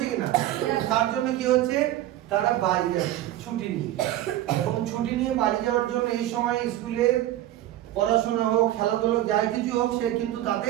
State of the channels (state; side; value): quieter; left; 14.0 dB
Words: কিনা? তার জন্য কি হচ্ছে, তারা বাড়ি যাচ্ছে ছুটি নিয়ে। এবং ছুটি নিয়ে বাড়ি যাওয়ার জন্য এই সময় স্কুলে পড়াশোনা হোক, খেলাধুলা যাই কিছু হোক, সে কিন্তু